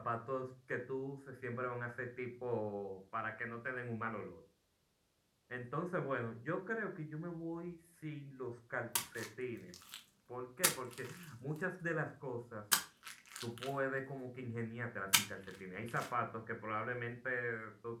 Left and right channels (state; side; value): identical; both; correlation 1.00